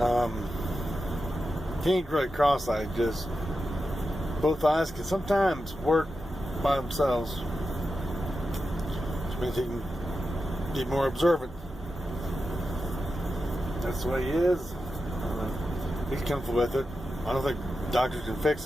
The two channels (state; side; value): normal; both; correlation 0.90